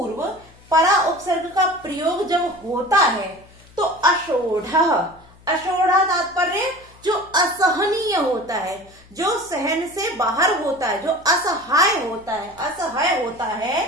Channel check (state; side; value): noise; left; hum, 26 dB below the sound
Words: परा उपसर्ग का प्रयोग जब होता है तो अषोढ़ः, अषोढ़ा तात्पर्य जो असहनीय होता है, जो सहन से बाहर होता है, जो असहाय होता है, असहाय होता है,